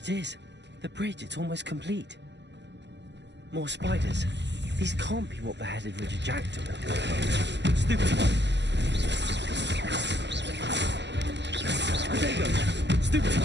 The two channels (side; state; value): left; late; 0.51 ms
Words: is. The bridge, it's almost complete. More spiders. These can't be what beheaded Richard Jackdaw. Stupid one. There you go. Stupid